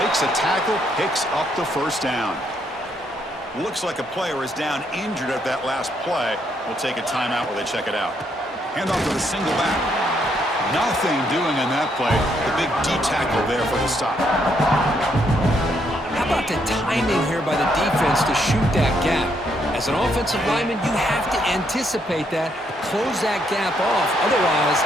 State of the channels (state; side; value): normal; both; correlation 0.74